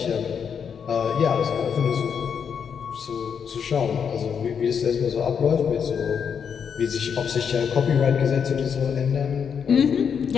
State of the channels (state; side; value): quieter; right; 7.1 dB